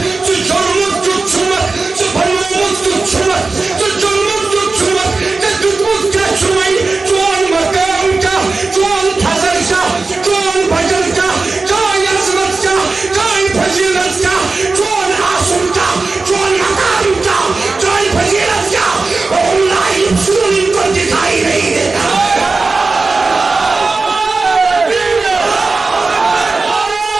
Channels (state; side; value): quieter; left; 3.9 dB